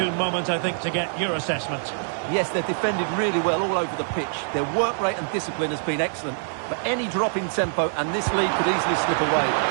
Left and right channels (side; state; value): left; silent; 62 dB below the other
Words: moment, I think, to get your assessment. Yes, they've defended really well all over the pitch. Their work rate and discipline has been excellent. But any drop in tempo and this lead could easily slip away.